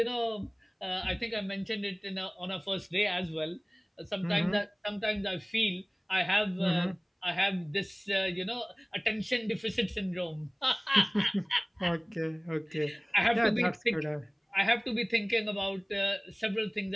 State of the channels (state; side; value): identical; both; correlation 1.00